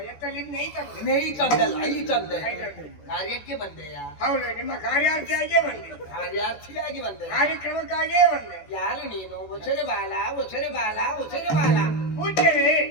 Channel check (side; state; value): right; late; 14 ms